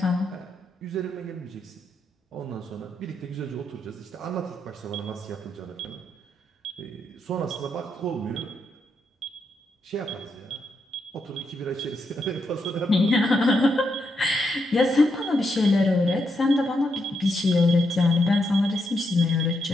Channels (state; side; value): normal; both; correlation 0.81